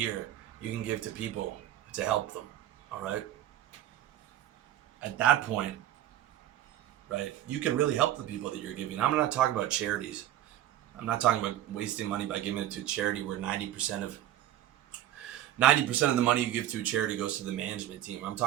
you can give to people to help them, all right? At that point, right, you can really help the people that you're giving. I'm not talking about charities. I'm not talking about wasting money by giving it to a charity where 90% of the money you give to a charity goes to the management team. I'm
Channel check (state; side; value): quieter; left; 12.6 dB